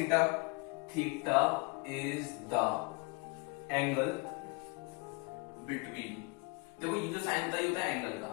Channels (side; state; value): right; quieter; 28.8 dB